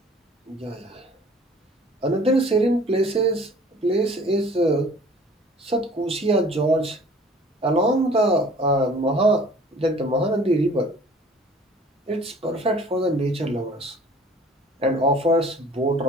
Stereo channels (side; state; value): both; normal; correlation 0.50